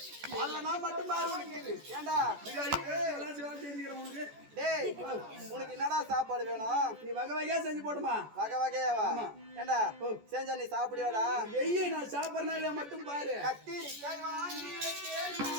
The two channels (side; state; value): left; late; 14 ms